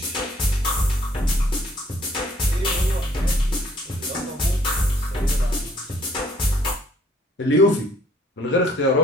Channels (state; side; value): normal; both; correlation 0.62